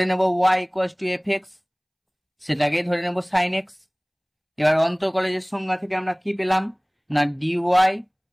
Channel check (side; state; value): both; identical; correlation 1.00